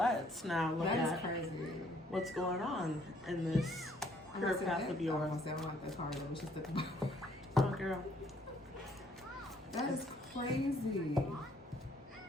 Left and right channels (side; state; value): both; normal; correlation 0.64